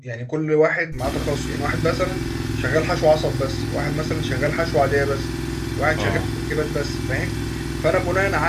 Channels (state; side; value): identical; both; correlation 1.00